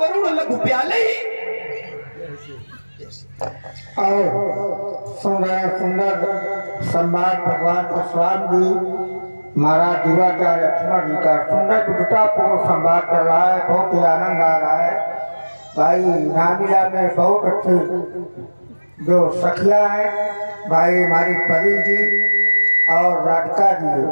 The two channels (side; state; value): both; inverted; correlation -1.00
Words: गरुड़ लघु प्याले। और सुंदर संवाद भगवान परशुराम जी महाराज दिवाचार्य लक्ष्मण जी का सुंदर विद्वतापूर्ण संवाद कर रहा है। बहुत ही आनंद आ रहा है। भाई नामिला में बहुत अच्छी जो सखिया है, भाई हमारी परी जी और राधिका जी